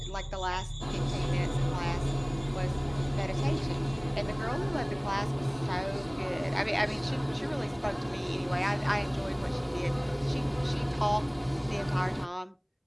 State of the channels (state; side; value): identical; both; correlation 1.00